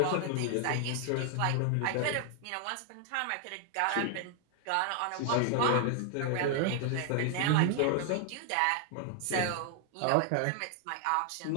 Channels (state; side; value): different; both; correlation 0.00